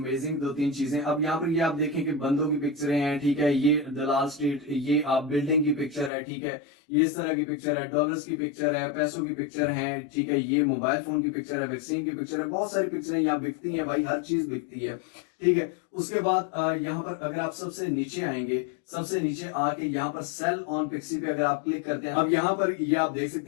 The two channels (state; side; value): drops out; right; at 6.1 s